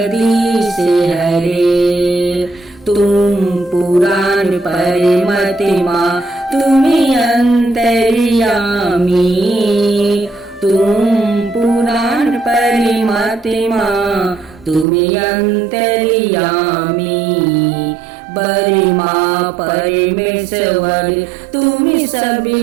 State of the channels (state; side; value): drops out; left; at 14.9 s